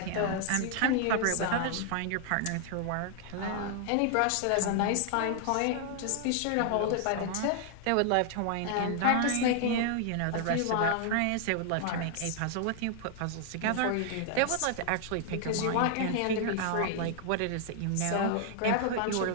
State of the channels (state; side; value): different; both; correlation 0.00